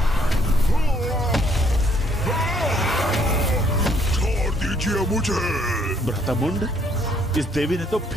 छोड़ दीजिए मुझे। भ्राता मुंड, इस देवी ने तो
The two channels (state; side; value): normal; both; correlation 0.66